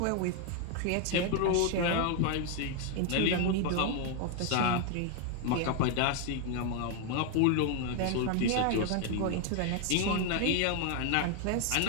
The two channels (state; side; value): different; both; correlation 0.01